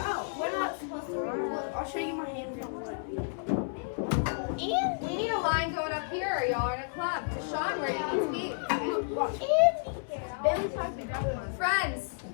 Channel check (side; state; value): right; silent; 57 dB below the other